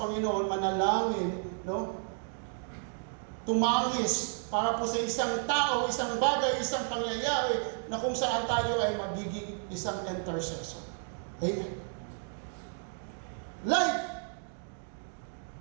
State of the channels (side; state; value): left; silent; 56 dB below the other